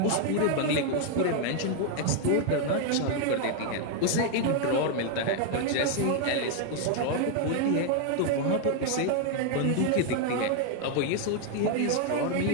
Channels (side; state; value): both; different; correlation 0.00